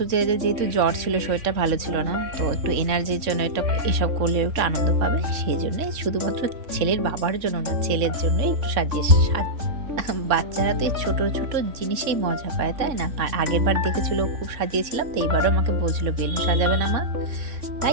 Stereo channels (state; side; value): late; left; 3.6 ms